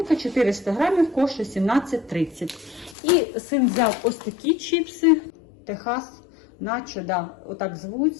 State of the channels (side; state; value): right; drops out; at 3.0 s